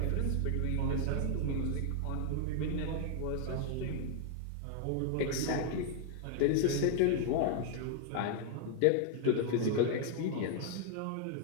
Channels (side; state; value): both; different; correlation 0.00